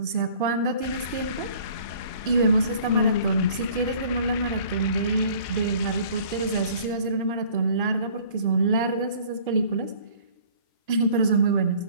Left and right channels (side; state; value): both; inverted; correlation -0.52